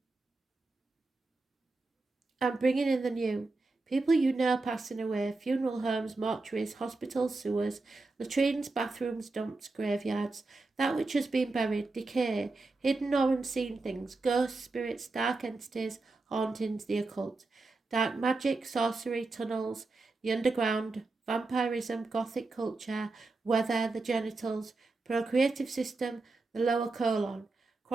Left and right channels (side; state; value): left; quieter; 3.5 dB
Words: bringing in the new. People you know passing away, funeral homes, mortuaries, hospitals, sewers, latrines, bathrooms, dumps, graveyards, that which has been buried, decay, hidden or unseen things, ghosts, spirits, dark entities, hauntings, the occult, dark magic, sorcery, tunnels, the underground, vampirism, gothic culture, weather, the genitals, procreative system, the lower colon,